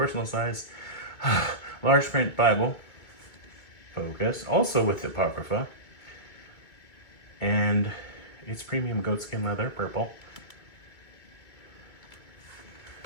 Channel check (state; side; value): late; right; 2.2 ms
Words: size, large print Bible. Focus, also with Apocrypha. And it's premium goatskin leather, purple.